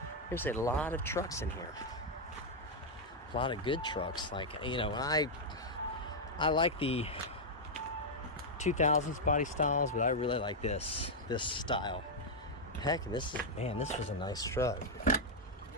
there's a lot of trucks in here. A lot of good trucks. Like, you know, I like the 2000s body styles, but I really like this style. Heck, this was a nice truck.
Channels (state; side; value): normal; both; correlation -0.02